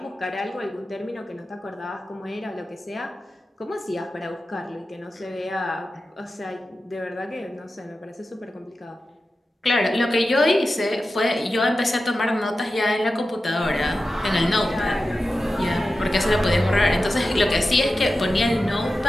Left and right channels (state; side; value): normal; both; correlation 0.93